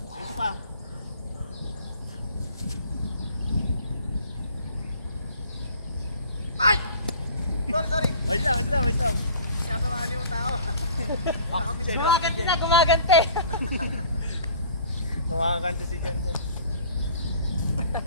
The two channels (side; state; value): both; inverted; correlation -0.48